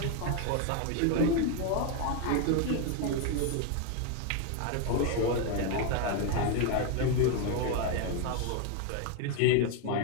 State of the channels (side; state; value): both; different; correlation 0.01